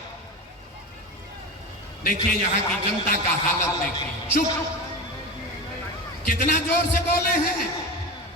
देखिए यहाँ की जनता का हालत देखिए, चुप, कितना जोर से बोले हैं,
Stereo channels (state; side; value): normal; both; correlation 0.25